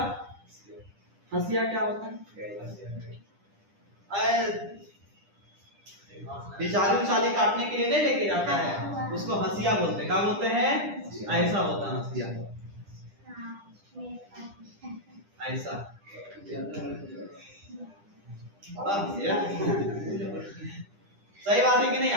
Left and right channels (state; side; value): late; left; 10 ms